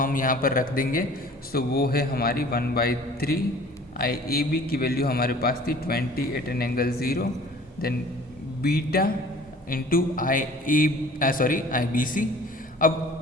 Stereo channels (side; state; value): both; normal; correlation 0.48